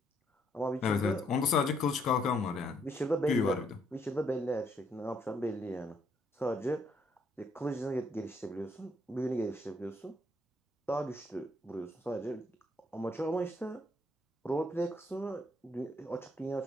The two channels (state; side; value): normal; both; correlation 0.71